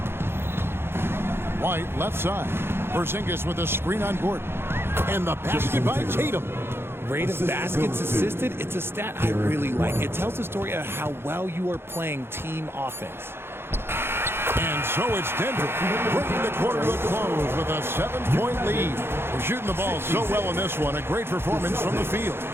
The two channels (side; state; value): left; late; 0.11 ms